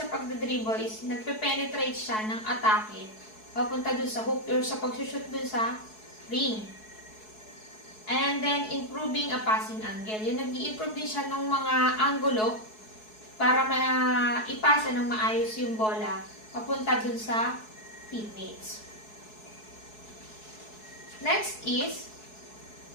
pagdadribble is nagpe-penetrate siya ng atake papunta dun sa hoop or sa pagsushoot dun sa ring. And then, improving a passing angle. Yung nag-i-improve din siya ng mga anggulo para ipasa ng maayos yung bola papunta dun sa teammates. Next is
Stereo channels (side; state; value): right; late; 4.7 ms